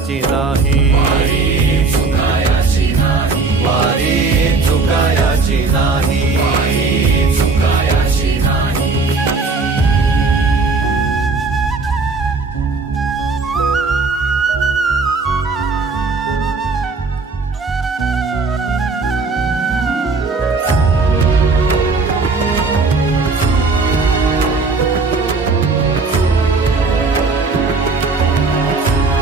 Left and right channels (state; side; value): quieter; left; 4.0 dB